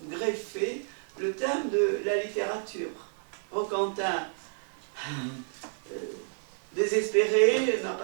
greffé le thème de la littérature. Roquentin, désespéré, n'a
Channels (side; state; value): left; silent; digital silence